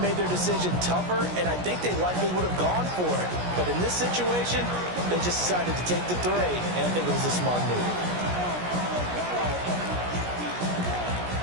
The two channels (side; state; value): left; late; 17 ms